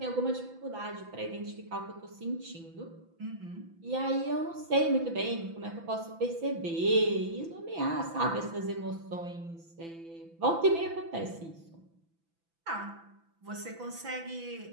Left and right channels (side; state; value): left; late; 6.0 ms